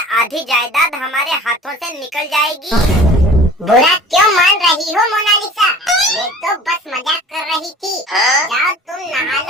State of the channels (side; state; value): both; normal; correlation 0.44